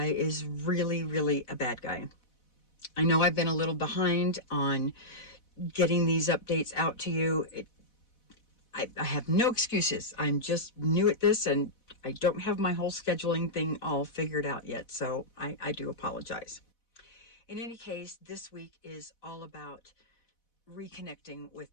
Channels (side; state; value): right; late; 4.1 ms